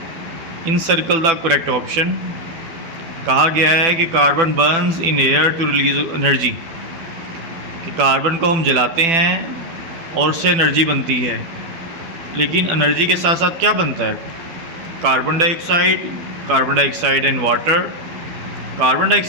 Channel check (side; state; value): left; late; 12 ms